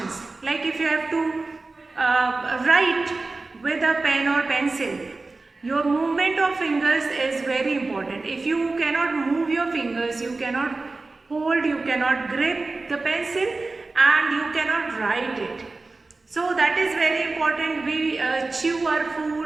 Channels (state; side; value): quieter; left; 3.5 dB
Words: Like if you have to write with a pen or pencil, your movement of fingers is very important. If you cannot move your fingers, you cannot hold, you cannot grip the pencil, and you cannot write it. So that is very important. We chew our